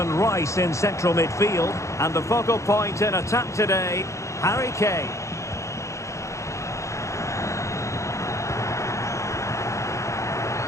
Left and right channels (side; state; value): right; late; 0.15 ms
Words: Rice in central midfield. And the focal point in attack today, Harry Kane.